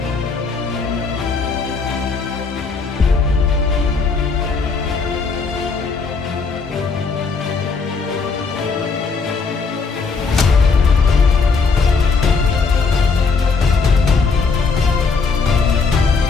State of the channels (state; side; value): quieter; right; 4.7 dB